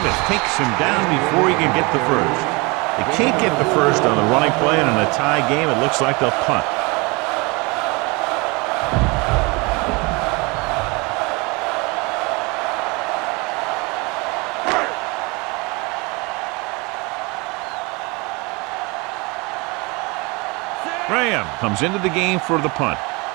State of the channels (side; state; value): left; quieter; 27.1 dB